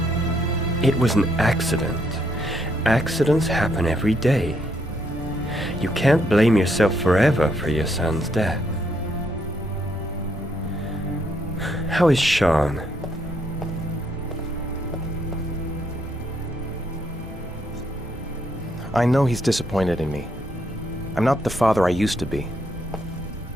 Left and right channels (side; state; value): both; normal; correlation 0.74